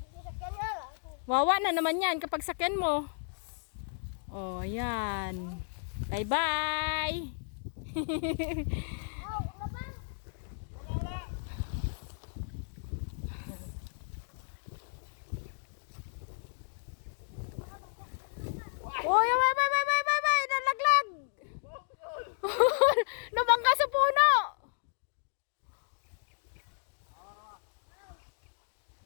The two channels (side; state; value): right; silent; digital silence